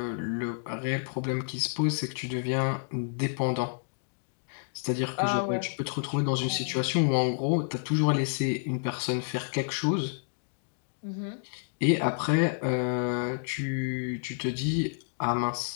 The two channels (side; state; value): right; silent; digital silence